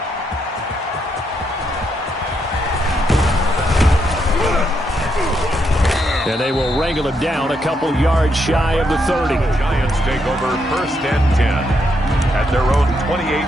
And they will wrangle it down a couple yards shy of the 30. The Giants take over 1st and 10 at their own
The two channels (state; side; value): normal; both; correlation 0.78